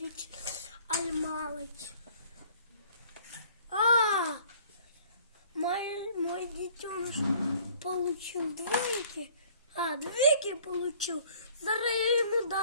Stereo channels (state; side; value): inverted; both; correlation -0.55